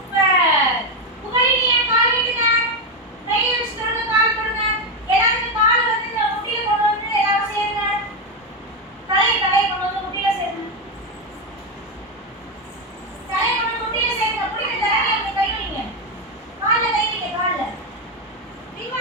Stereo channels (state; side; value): normal; both; correlation 0.08